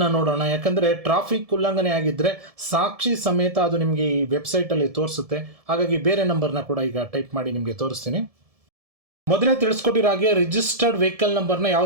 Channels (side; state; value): left; late; 1.7 ms